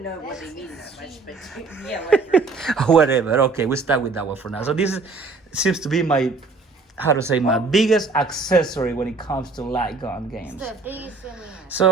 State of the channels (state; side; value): quieter; left; 4.1 dB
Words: know what they mean that much. But yeah, whatever. Whatever. Okay, we start with that one for now. So this seems to be my, how to say, my biggest accessory when it comes to light gun games. The biggest thing we have.